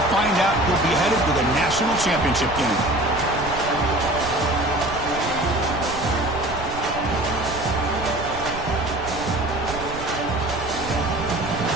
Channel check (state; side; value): noise; right; rumble, 11 dB below the sound